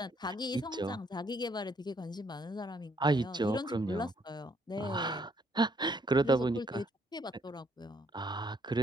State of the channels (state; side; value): normal; both; correlation 0.69